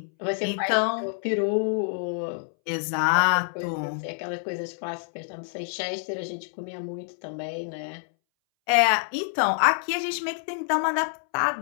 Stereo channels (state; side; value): silent; right; 60 dB below the other